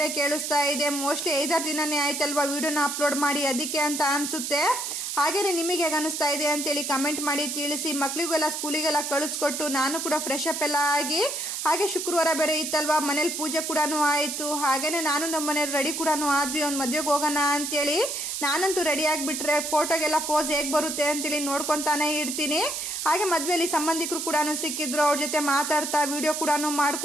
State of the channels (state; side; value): noise; right; hiss, 4 dB below the sound